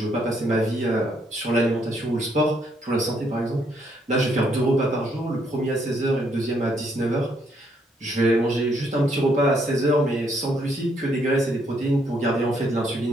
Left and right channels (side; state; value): both; normal; correlation 0.71